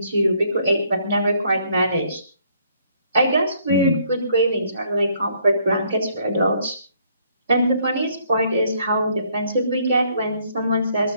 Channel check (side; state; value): both; inverted; correlation -0.67